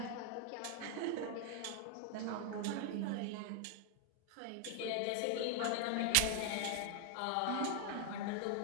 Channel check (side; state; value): both; different; correlation 0.00